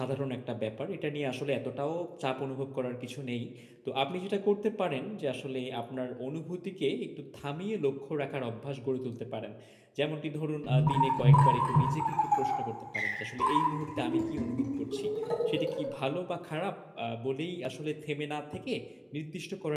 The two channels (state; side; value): identical; both; correlation 1.00